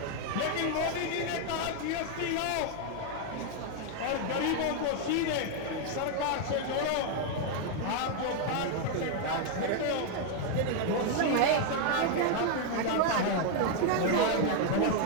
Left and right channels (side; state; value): both; different; correlation 0.00